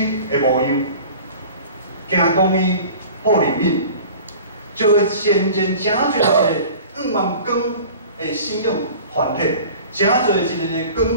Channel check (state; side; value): inverted; both; correlation -0.42